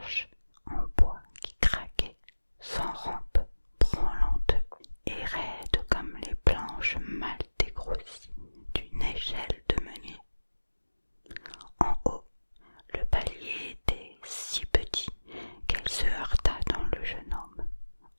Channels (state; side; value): inverted; both; correlation -1.00